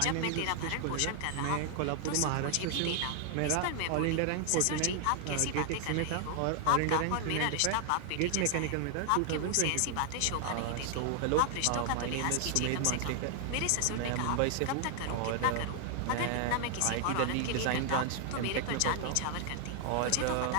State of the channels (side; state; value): both; different; correlation 0.00